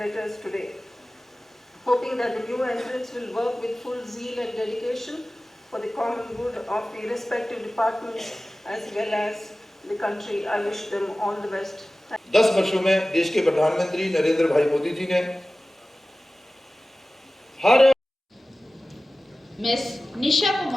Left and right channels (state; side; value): normal; both; correlation 0.97